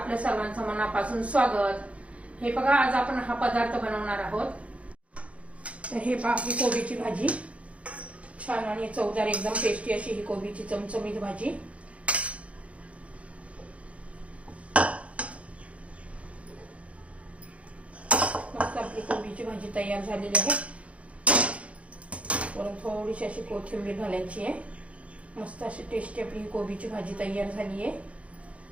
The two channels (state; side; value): late; left; 0.064 ms